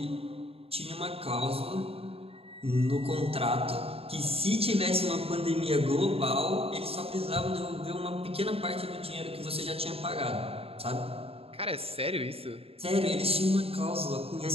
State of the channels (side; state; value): left; late; 0.28 ms